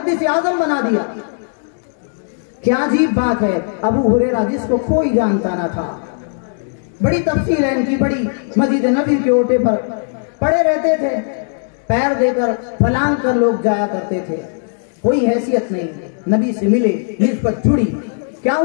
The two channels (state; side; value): silent; right; digital silence